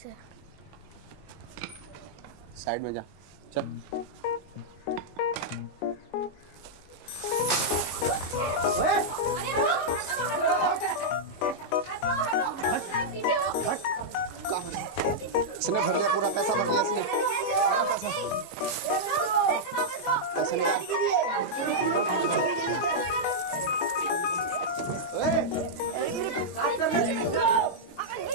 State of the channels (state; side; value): late; right; 22 ms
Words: है। साइड में जा, चल। इसने भर लिया, पूरा पैसा भर लिया इसने। पैसे